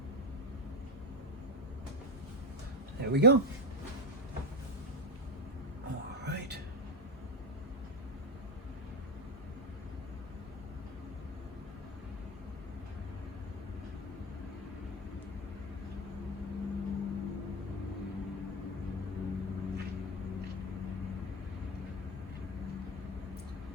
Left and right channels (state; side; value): normal; both; correlation 0.11